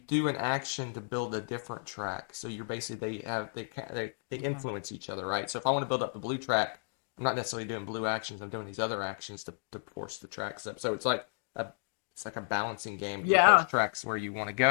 an action to build a different track. So you're basically they influence each other, right? So if I want to build up the blue track, I'm not necessarily doing blue actions. I'm doing these other actions to force the tracks up. So it's like a balancing game. Yeah. Those tracks where you want to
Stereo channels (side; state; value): right; silent; digital silence